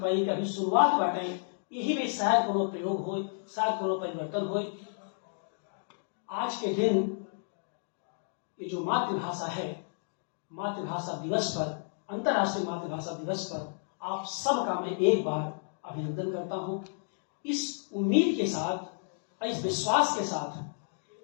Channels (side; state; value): right; silent; digital silence